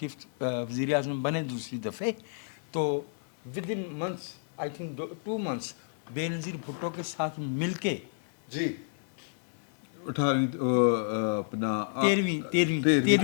वज़ीर आज़म बने दूसरी दफ़े, तो with in months, I think 2 months, Benazir Bhutto के साथ मिलके जी 18 अपना 13वीं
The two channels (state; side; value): silent; right; digital silence